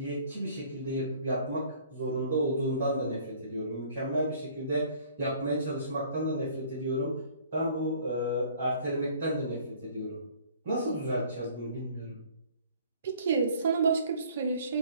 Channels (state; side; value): inverted; both; correlation -0.54